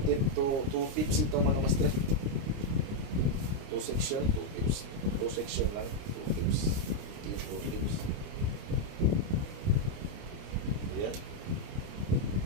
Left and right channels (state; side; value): late; left; 29 ms